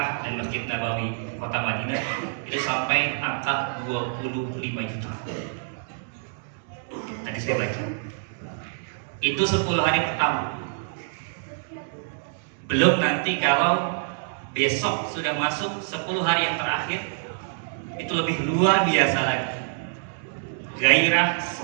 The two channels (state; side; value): silent; left; digital silence